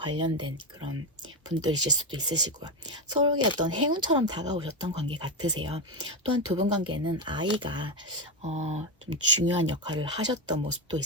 그런 분들이실 수도 있으시고요. 서로에게 어떤 행운처럼 다가오셨던 관계 같으세요. 또한 두 분 관계는 아이가 좀 중요한 역할을 하셨던 모습도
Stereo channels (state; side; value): normal; both; correlation 0.11